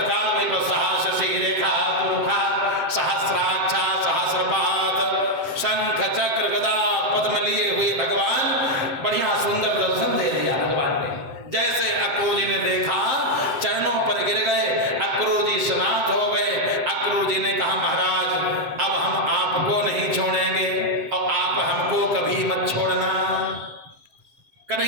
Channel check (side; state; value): left; late; 7.7 ms